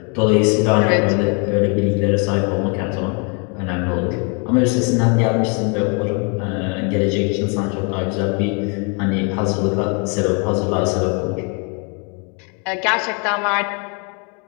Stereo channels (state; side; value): quieter; right; 35.7 dB